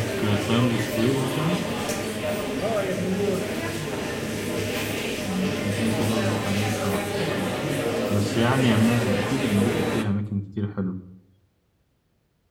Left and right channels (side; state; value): both; identical; correlation 1.00